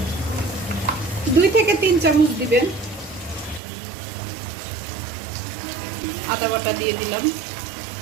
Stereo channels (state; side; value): drops out; left; at 3.6 s